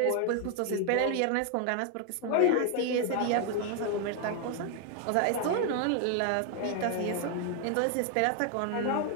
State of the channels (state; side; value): different; both; correlation 0.00